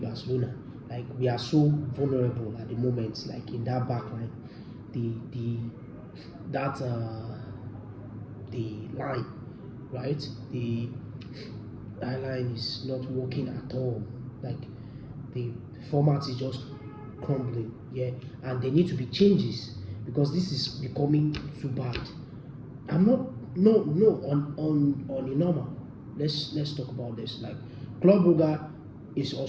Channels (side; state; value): both; identical; correlation 1.00